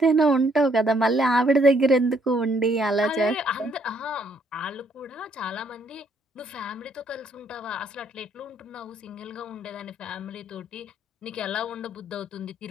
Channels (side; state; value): both; normal; correlation 0.68